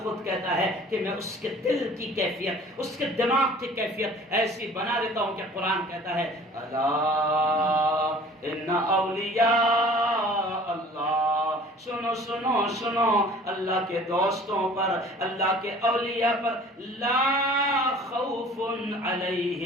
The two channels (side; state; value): both; normal; correlation 0.48